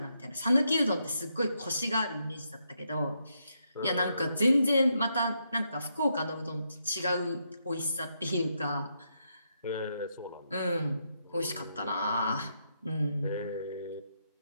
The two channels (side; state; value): both; inverted; correlation -0.80